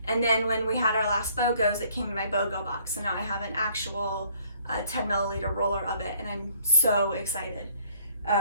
And then when we had our last BOGOs, it came in my BOGO box. So now I have an actual 10 milliliter roller of it, and I'm so excited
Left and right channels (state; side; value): inverted; both; correlation -0.60